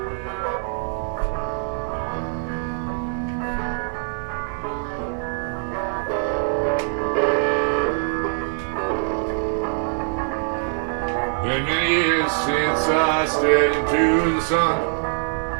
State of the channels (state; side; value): silent; left; digital silence